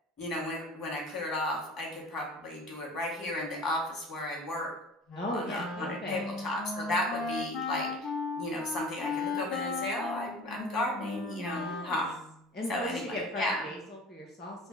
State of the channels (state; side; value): normal; both; correlation 0.41